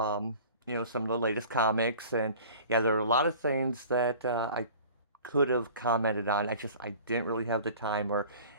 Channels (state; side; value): inverted; both; correlation -0.44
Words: of the latest comics. And yeah, there are a lot of things that I could have commented on. I didn't really have the time or,